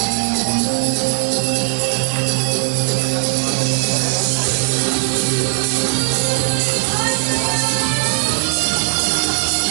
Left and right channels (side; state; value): left; silent; digital silence